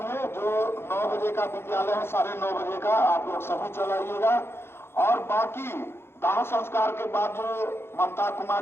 जो 9 बजे का विद्यालय है, 9:30 बजे का आप लोग सभी चलाइएगा। और बाकी दाह संस्कार के बाद जो ममता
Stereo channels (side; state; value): right; late; 0.12 ms